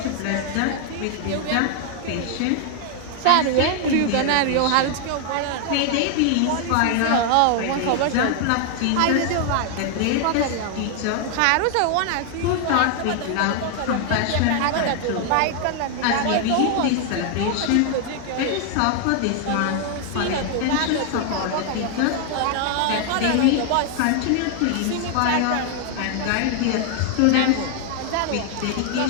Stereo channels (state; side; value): different; both; correlation 0.00